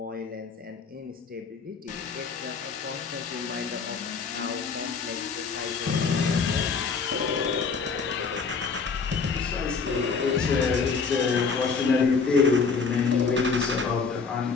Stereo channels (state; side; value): quieter; right; 5.1 dB